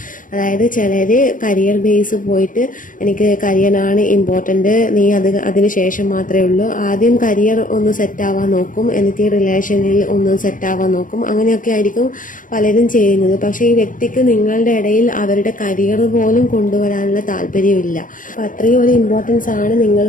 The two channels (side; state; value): right; late; 0.39 ms